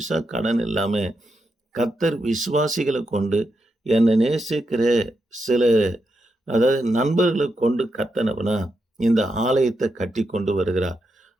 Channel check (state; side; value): normal; both; correlation 0.84